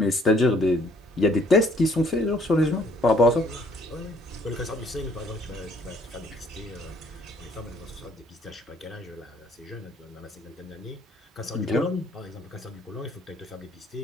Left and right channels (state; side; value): normal; both; correlation 0.62